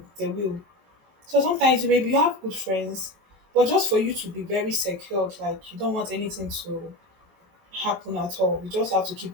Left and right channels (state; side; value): late; left; 23 ms